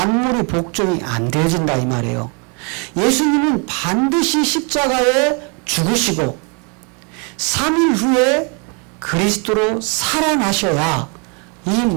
복종이 안 되어진다 이 말이에요. 예수님은 반드시 십자가에 죽으시고 3일 후에 그리스도로 살아나셔야 이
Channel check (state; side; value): quieter; left; 35.1 dB